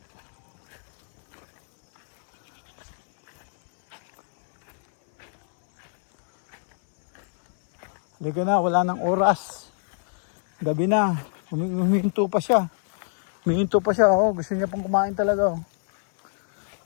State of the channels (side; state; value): right; silent; 63 dB below the other